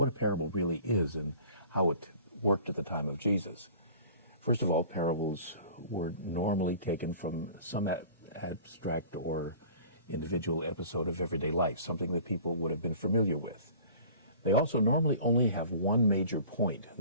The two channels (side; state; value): both; inverted; correlation -0.45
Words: a parable really is and how it worked at the time of Jesus. First of all, parables were normally taken from some abstract or individual episode of everyday life, something that people would have been familiar with. They also normally only have one major point.